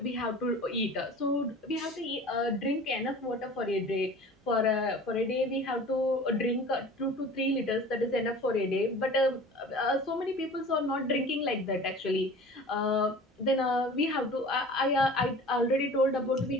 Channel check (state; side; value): normal; both; correlation 0.42